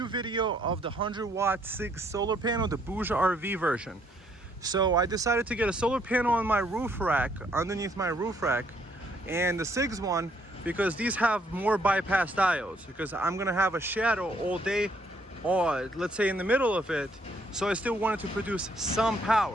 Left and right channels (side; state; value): both; normal; correlation 0.68